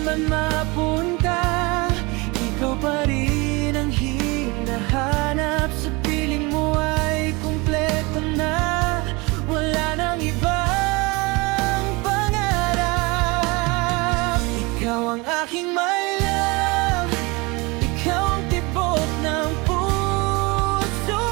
man mapunta, ikaw pa rin ang hinahanap. Sa piling mo ay kumpleto na, wala nang ibang pangarap. Ikaw ang aking my love, ikaw ang tibok ng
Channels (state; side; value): quieter; left; 25.8 dB